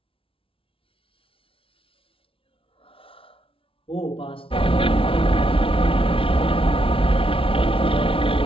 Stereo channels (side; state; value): right; late; 0.26 ms